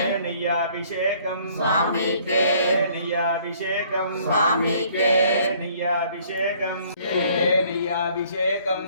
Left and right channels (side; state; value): both; inverted; correlation -0.59